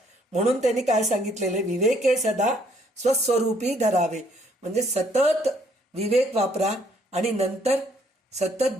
म्हणून त्यांनी काय सांगितलेले, विवेके सदा स्वस्वरूपी धरावे. म्हणजे सतत विवेक वापरा आणि नंतर सतत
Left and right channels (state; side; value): normal; both; correlation 0.66